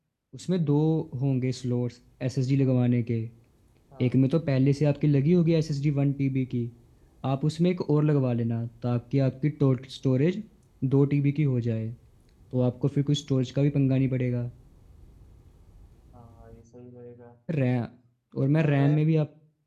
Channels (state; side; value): identical; both; correlation 1.00